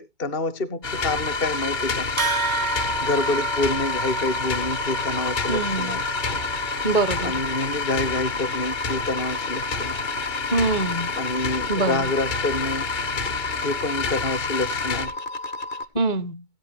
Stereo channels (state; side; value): late; right; 2.2 ms